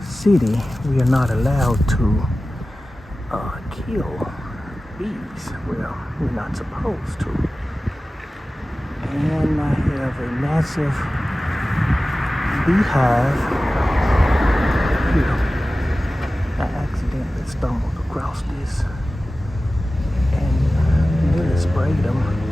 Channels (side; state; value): both; normal; correlation 0.96